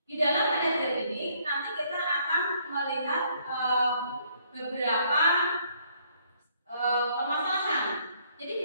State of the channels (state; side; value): inverted; both; correlation -0.67